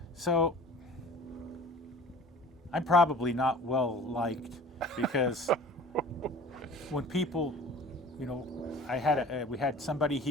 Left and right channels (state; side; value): normal; both; correlation 0.44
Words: so I'm probably not well liked, because when people, you know, we had somebody